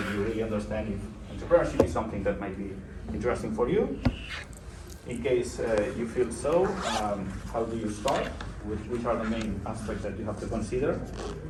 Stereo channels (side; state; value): both; identical; correlation 1.00